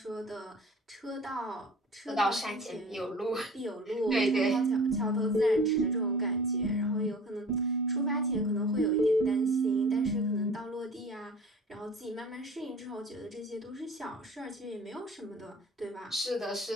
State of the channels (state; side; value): normal; both; correlation 0.43